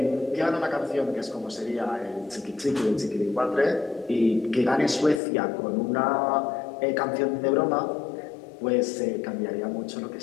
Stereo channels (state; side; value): drops out; right; at 5.2 s